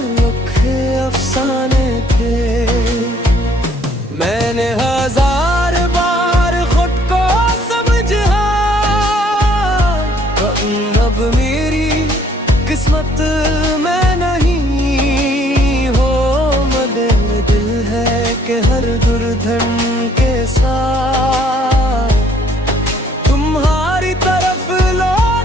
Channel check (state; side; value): normal; both; correlation 0.62